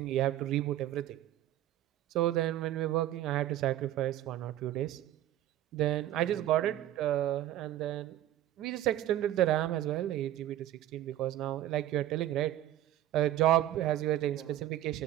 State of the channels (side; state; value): left; quieter; 13.2 dB